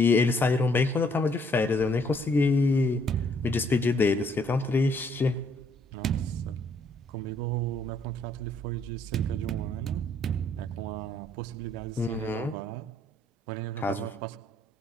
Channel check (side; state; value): both; normal; correlation 0.66